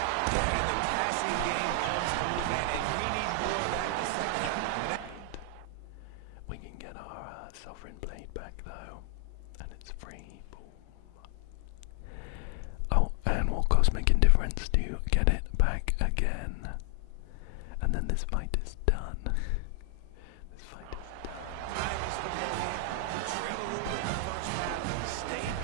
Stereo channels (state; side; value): different; both; correlation 0.00